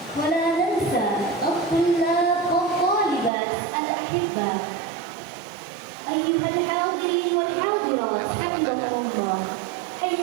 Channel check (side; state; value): left; drops out; at 3.3 s